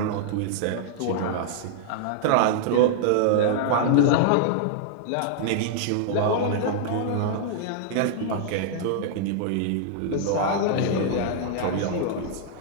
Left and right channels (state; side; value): different; both; correlation -0.01